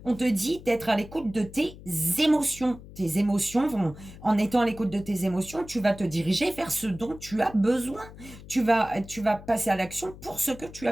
On te dit d'être à l'écoute de tes émotions. Tes émotions vont, en étant à l'écoute de tes émotions, tu vas te diriger vers ce dont tu as besoin. Tu vas passer à l'action pour ce que tu as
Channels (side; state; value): left; noise; hum, 17 dB below the sound